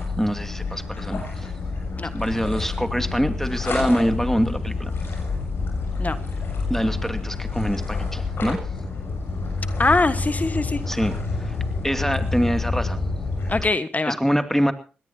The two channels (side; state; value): both; normal; correlation 0.90